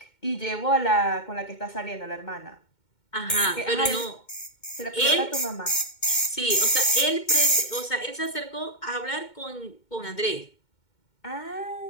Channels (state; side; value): late; right; 2.1 ms